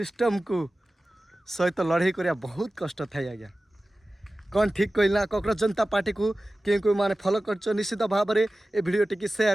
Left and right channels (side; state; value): both; normal; correlation 0.96